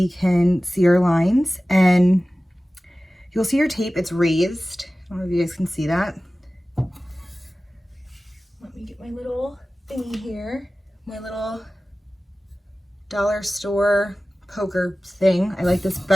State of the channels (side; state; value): both; normal; correlation 0.96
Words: can see our lines. And you'll see your tape, it's raised. I don't know if you guys can see that. Let me get my little thingy here. My little dollar store poker thing. I like this